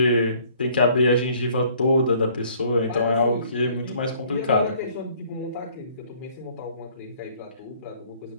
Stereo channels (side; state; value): both; inverted; correlation -0.59